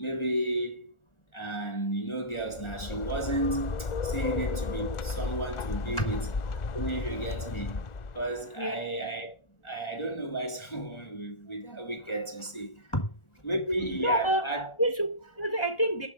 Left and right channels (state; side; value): late; right; 1.4 ms